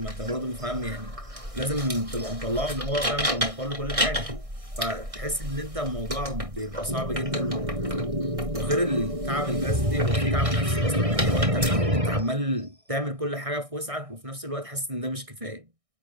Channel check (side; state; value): left; late; 1.6 ms